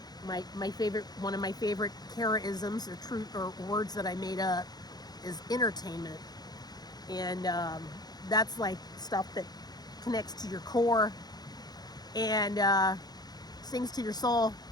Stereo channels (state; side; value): late; right; 0.19 ms